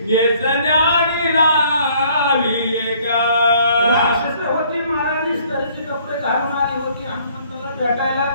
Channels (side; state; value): both; inverted; correlation -0.60